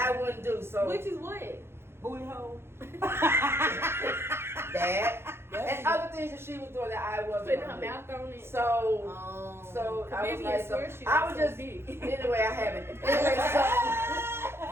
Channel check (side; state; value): left; late; 0.12 ms